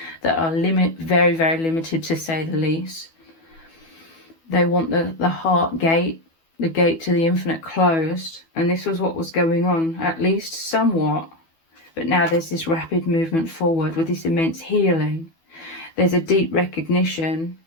that are very, very limited, to say the least. They want the heart gate, the gate to the infinite, closed. And this was what was going on, at least somewhat. But now there's this rapid movement forward with this immense healing. There's a deep recognition.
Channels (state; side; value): late; right; 12 ms